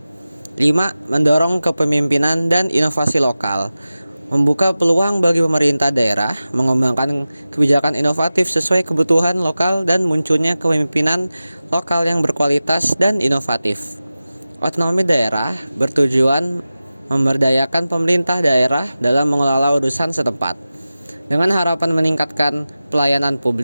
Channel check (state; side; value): inverted; both; correlation -0.95